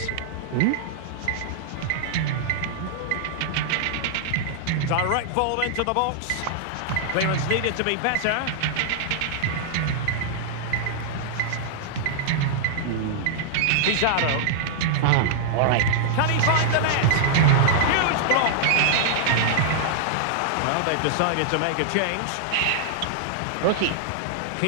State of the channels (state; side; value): different; both; correlation -0.01